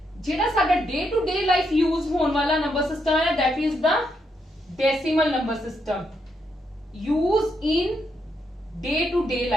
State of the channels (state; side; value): normal; both; correlation 0.79